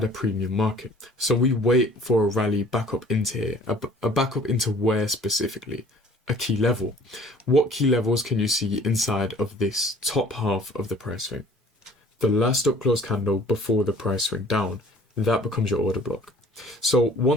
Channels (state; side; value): normal; both; correlation 0.52